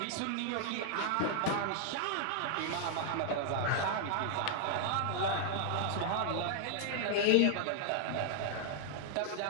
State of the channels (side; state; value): both; different; correlation 0.00